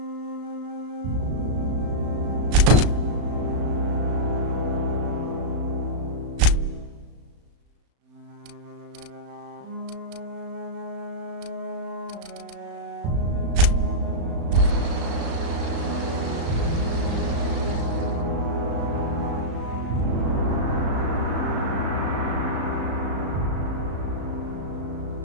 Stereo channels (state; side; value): late; left; 35 ms